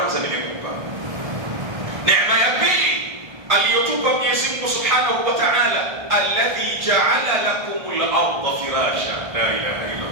nimekupa. Neema ya pili aliyotupa Mwenyezi Mungu Subhanahu wa Ta'ala, alladhi ja'ala lakumul arda firasha. La ilaha illa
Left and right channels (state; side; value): late; left; 1.5 ms